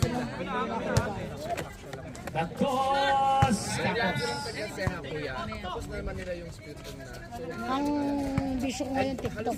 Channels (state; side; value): identical; both; correlation 1.00